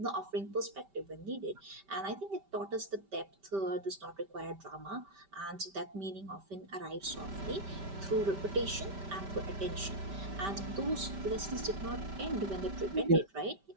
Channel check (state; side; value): late; left; 5.1 ms